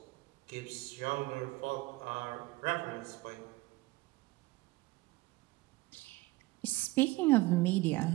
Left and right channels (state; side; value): quieter; left; 20.6 dB